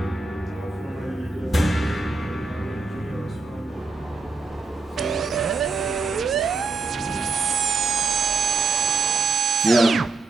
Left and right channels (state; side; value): quieter; left; 3.9 dB